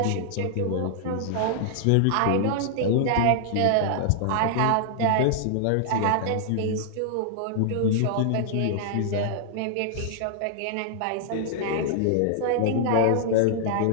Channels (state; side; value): different; both; correlation -0.01